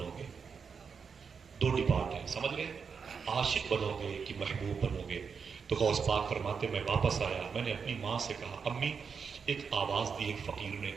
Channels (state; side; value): quieter; left; 6.0 dB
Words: گے؟ 2 ڈپارٹ ہیں، سمجھ گئے؟ عاشق بنو گے کہ محبوب بنو گے؟ تو غوث پاک فرماتے میں واپس آیا، میں نے اپنی ماں سے کہا امی، ایک آواز دی ایک فقیر نے،